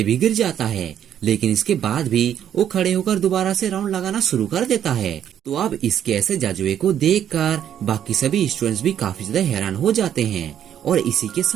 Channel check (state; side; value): quieter; left; 9.9 dB